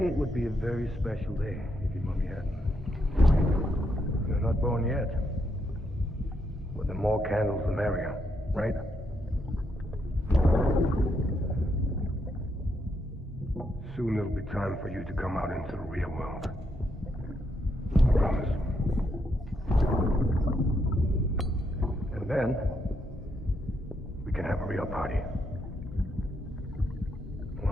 would be a very special day if your mommy hadn't. You're not born yet. But the more candles, the merrier, right? Soon it'll be time for you to come out into the real world. I promise. And then, we can have a real party.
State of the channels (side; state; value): both; normal; correlation 0.78